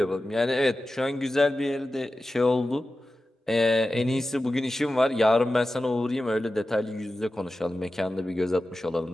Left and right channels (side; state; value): both; normal; correlation 0.94